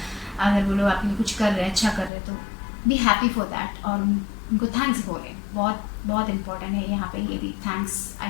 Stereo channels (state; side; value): drops out; right; at 2.1 s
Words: अगर वो लोग आपके लिए कुछ कर रहे हैं, अच्छा कर रहे हैं, तो बी हैप्पी फॉर दैट और उनको थैंक्स बोले। बहुत बहुत इंपॉर्टेंट है यहाँ पे ये भी, thanks. I